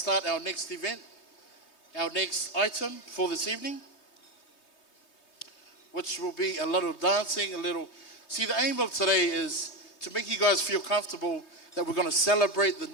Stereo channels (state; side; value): late; right; 3.2 ms